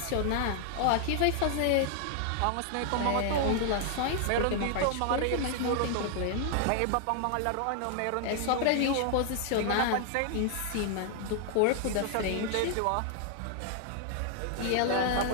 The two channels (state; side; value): different; both; correlation 0.00